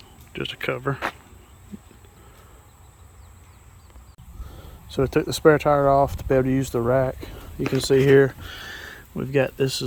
cover. So we took the spare tire off to be able to use the rack. You can see here we've got, this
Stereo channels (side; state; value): both; identical; correlation 1.00